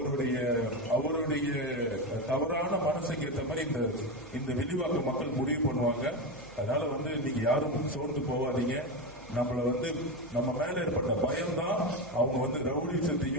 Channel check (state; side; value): noise; right; hum, 22 dB below the sound